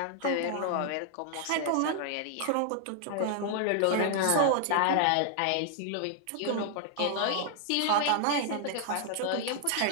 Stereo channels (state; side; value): different; both; correlation 0.00